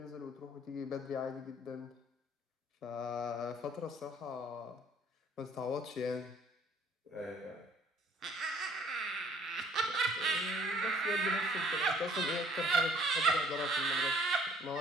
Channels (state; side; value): normal; both; correlation 0.59